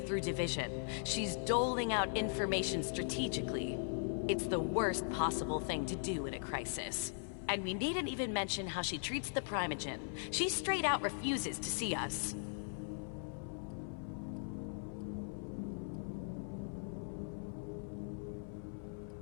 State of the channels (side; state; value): right; silent; 51 dB below the other